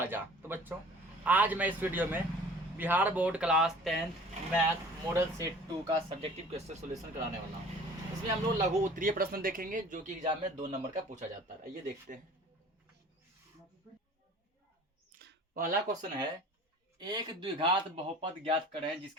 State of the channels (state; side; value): normal; both; correlation 0.47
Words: तो बच्चों, आज मैं इस वीडियो में Bihar board class 10th math model set 2 का सब्जेक्टिव क्वेश्चन सॉल्यूशन कराने वाला हूँ। इसमें हम लोग लघु उत्तरीय प्रश्न देखेंगे जो कि एग्जाम में 2 नंबर का पूछा जाता है। आइए देखते हैं। पहला क्वेश्चन है, एक द्विघात बहुपद ज्ञात करें